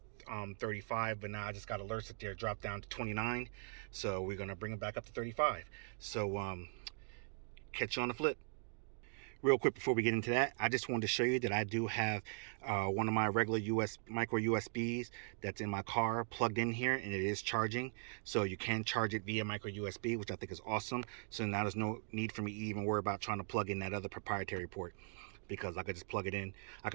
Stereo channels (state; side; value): silent; left; 51 dB below the other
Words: 35, but now I just got alerts that they're dropped down to 29. So we're gonna bring them back up to 35. So catch you on the flip. Real quick before we get into that, I just wanted to show you that I do have one of my regular micro USBs that's in my car plugged in here, and it is charging. So you can charge it via micro USB, which I think is awesome. So now there's no need for me to even worry about trying to plug in that other proprietary port, because I could just plug it in. I